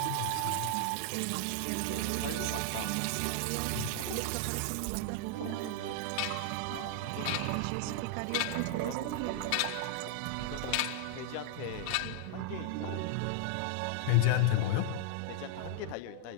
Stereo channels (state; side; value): different; both; correlation 0.00